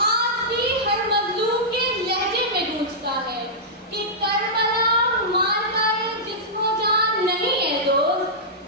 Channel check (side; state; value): both; normal; correlation -0.13